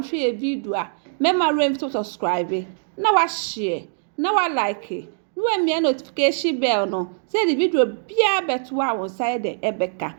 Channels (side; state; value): left; silent; digital silence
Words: e video a mema rem to subscribe. Na wa share, na wa like. Na wa mia notification bell no. Say the video bia beto a won side the ebeka.